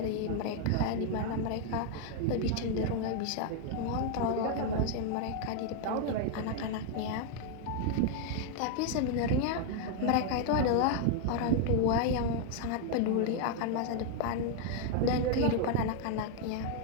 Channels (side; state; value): both; different; correlation 0.00